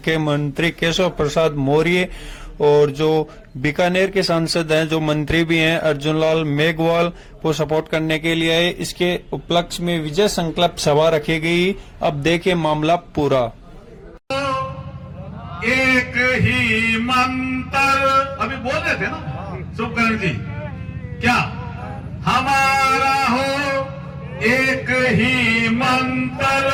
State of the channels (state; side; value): identical; both; correlation 1.00